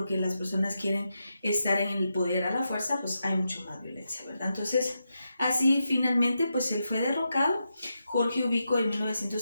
las personas quieren estar en el poder a la fuerza, pues hay mucho más violencia, ¿verdad? Entonces, así finalmente, pues él fue derrocado. Jorge Ubico, de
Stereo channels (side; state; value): both; inverted; correlation -0.86